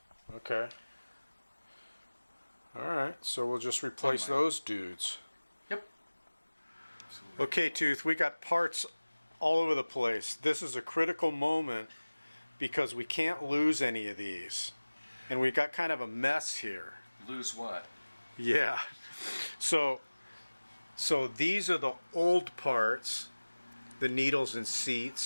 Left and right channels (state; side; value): inverted; both; correlation -1.00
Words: Okay. All right. So we'll just replace those dudes. Yep. Okay, Tooth, we got parts all over the place. This is a critical moment because we can't lose any of these. And we got kind of a mess here. Lose what? Yeah. So these are the old parts, the needles and